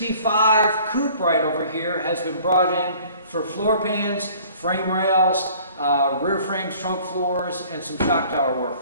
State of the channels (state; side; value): inverted; both; correlation -0.52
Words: coupe right over here has been brought in for floor pans, frame rails, rear frames, trunk floors, and some shock tower work.